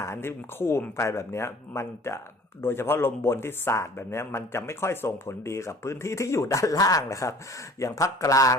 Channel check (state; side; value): normal; both; correlation 0.49